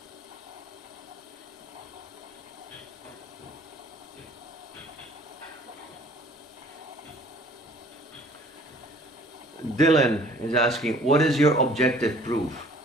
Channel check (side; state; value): both; normal; correlation 0.53